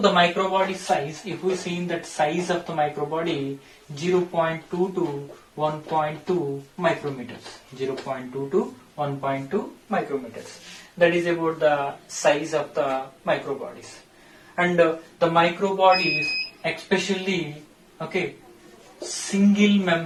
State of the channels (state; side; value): identical; both; correlation 1.00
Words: microbody size, if we see in that size of the microbody, 0.2 to 1.2 micrometers. 0.2 to 1.2 micrometers. That is about the size of the microbodies. And the microbodies, especially, single